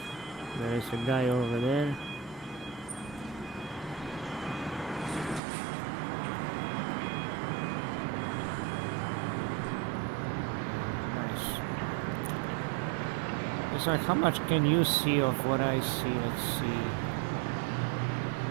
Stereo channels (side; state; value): left; drops out; at 5.4 s